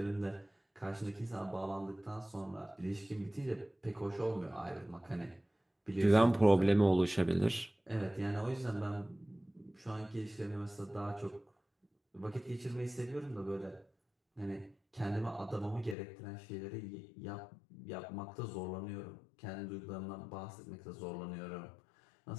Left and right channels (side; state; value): right; drops out; at 16.0 s